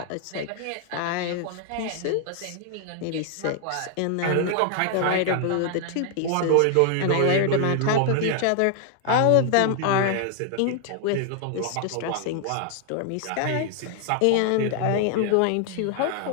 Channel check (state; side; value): different; both; correlation 0.00